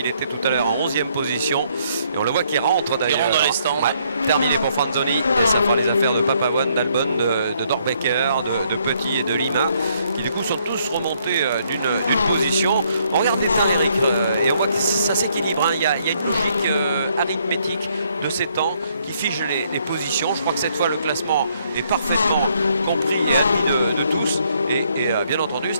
était tout à l'heure en 11e position. Et on le voit qui rentre d'ailleurs. Il rentre dans les stands. Ouais, terminé pour Franzoni. Et ça fera les affaires de Papavoine, d'Albon, de Dorbecker, de Petit et de Lima qui du coup sont tous remontés d'une position. On regarde bien Eric et on voit que ça s'équilibre. Hein. Il y a une logique arithmétique de ses temps, qui fiche les positions. Je crois que cette fois le classement est parfaitement compris et admis de tous. Et bien entendu,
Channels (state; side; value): inverted; both; correlation -0.70